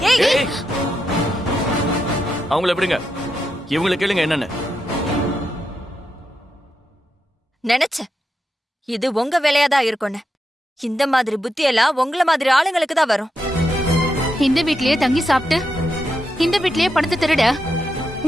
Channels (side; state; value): both; normal; correlation 0.85